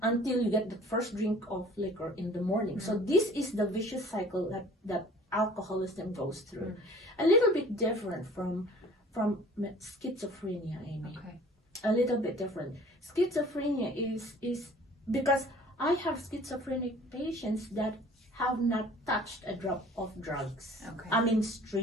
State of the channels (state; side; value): normal; both; correlation 0.50